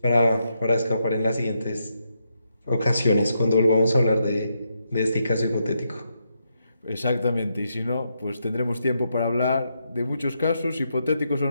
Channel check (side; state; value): both; inverted; correlation -0.81